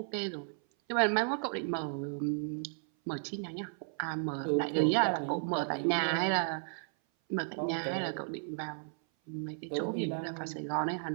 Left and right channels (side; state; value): left; silent; 55 dB below the other